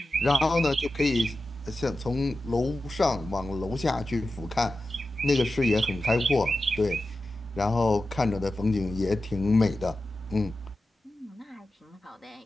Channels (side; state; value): both; normal; correlation 0.93